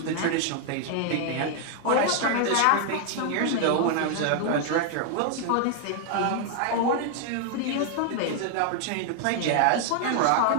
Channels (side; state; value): both; different; correlation 0.00